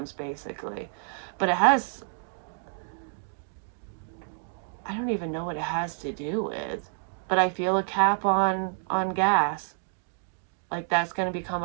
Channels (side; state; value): left; silent; digital silence